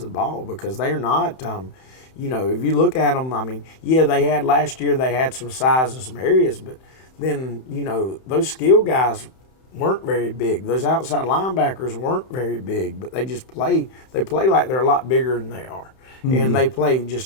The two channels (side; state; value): right; late; 31 ms